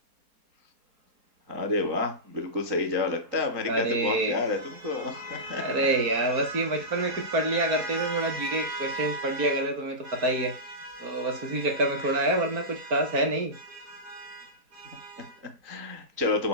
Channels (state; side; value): late; left; 4.3 ms